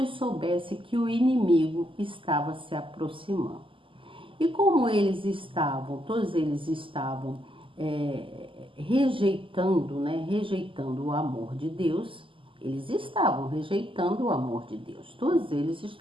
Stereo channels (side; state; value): left; late; 0.25 ms